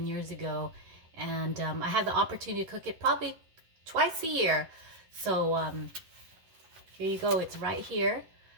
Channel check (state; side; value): late; left; 11 ms